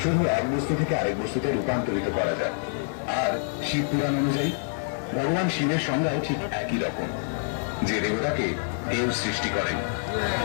শুধু এক বস্তু থেকে আরেক বস্তুতে রূপান্তরিত করা যায়। আর শিব পুরাণ অনুযায়ী ভগবান শিবের সংজ্ঞাও ঠিক একই রকম। যে দেবতাকে কেউ সৃষ্টি করেন,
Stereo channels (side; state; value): right; silent; digital silence